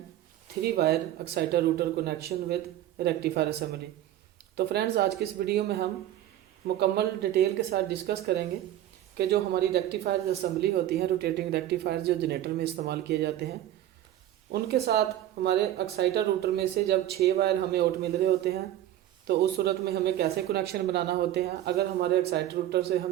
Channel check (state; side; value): quieter; left; 12.7 dB